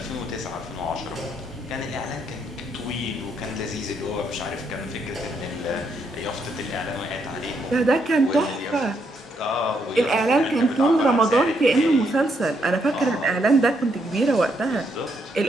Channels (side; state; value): both; normal; correlation 0.75